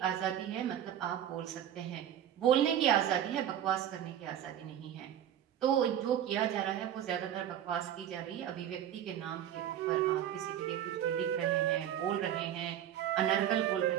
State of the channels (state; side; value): quieter; left; 10.7 dB